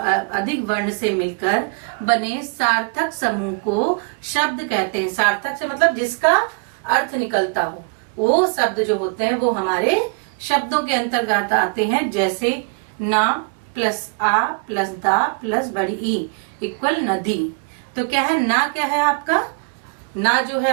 वर्ण से मिलकर बने सार्थक समूह को शब्द कहते हैं। सार्थक से मतलब जिसका अर्थ निकलता हो, वो शब्द जो होते हैं वो हमारे शब्दों के अंतर्गत आते हैं। जैसे ना प्लस आ प्लस दा प्लस बड़ी ई इक्वल नदी। तो क्या है ना, क्या है आपका ना जो है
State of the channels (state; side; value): quieter; left; 35.6 dB